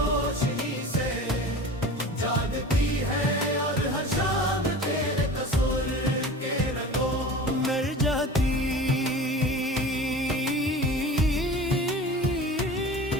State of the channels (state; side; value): normal; both; correlation 0.37